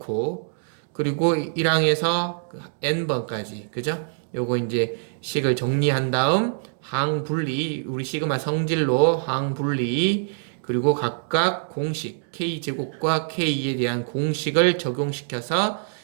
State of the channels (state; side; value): silent; left; digital silence